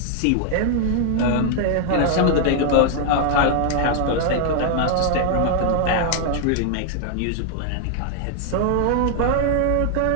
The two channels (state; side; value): different; both; correlation 0.00